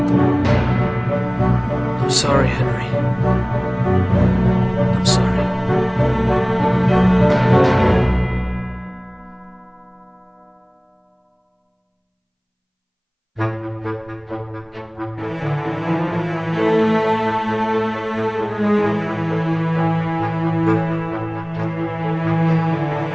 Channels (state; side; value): identical; both; correlation 1.00